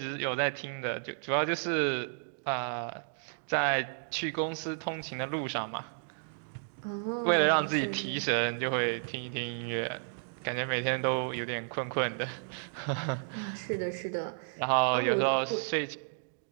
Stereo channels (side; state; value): left; silent; digital silence